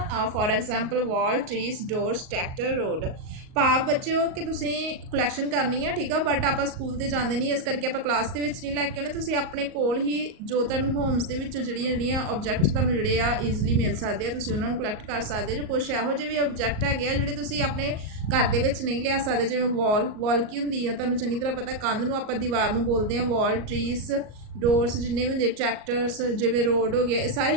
for example wall trees doors tractor road ਭਾਵ ਬੱਚਿਓ ਕਿ ਤੁਸੀਂ collection ਕਰਨੀ ਹੈ ਠੀਕ ਆ but ਆਪਾਂ school ਤੇ ਜਾਂਦੇ ਨਹੀਂ ਇਸ ਕਰਕੇ ਆਪਾਂ ਕਲਾਸ ਦੇ ਵਿੱਚ ਨਹੀਂ ਲੈ ਕੇ ਆਉਣੇ ਤੁਸੀਂ ਆਪਣੇ ਕੋਲ ਹੀ ਜੋ ਤੁਹਾਨੂੰ ਹੋਮਸ ਦੇ ਵਿੱਚ ਜਿਹੜੀਆਂ ਆਬਜੈਕਟਸ ਤੁਹਾਨੂੰ ਜਿਹੜੇ ਆ ਈਜ਼ੀਲੀ ਮਿਲ ਸਕਦੇ ਆ ਤੁਸੀਂ ਉਹਨਾਂ ਨੂੰ ਕਲੈਕਟ ਕਰ ਸਕਦੇ ਜੋ ਕੁਛ ਇਹੋ ਜਿਹੇ ਵੀ ਆਬਜੈਕਟ ਹੈਗੇ ਆ ਜਿਹੜੇ ਤੁਸੀਂ ਆਪਣੇ ਘਰ ਦੇ ਵਿੱਚ ਨਹੀਂ ਲਿਆ ਸਕਦੇ ਜਿਵੇਂ ਵਾਲ ਕੀ ਹੁੰਦੀ ਆ ਤੁਹਾਨੂੰ ਚੰਗੀ ਤਰ੍ਹਾਂ ਪਤਾ ਕੰਧ ਨੂੰ ਆਪਾਂ ਦੀਵਾਰ ਨੂੰ ਬੋਲਦੇ ਆ ਵਾਲ ਟਰੀਸ ਡੋਰਸ ਜਿੰਨੇ ਵੀ ਹੁੰਦੇ ਟਰੈਕਟਰਸ ਜਿਵੇਂ ਰੋਡ ਹੋ ਗਿਆ ਇਹ ਸਾਰੇ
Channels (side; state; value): left; late; 38 ms